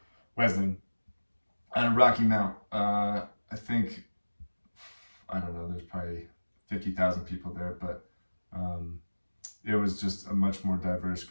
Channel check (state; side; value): inverted; both; correlation -1.00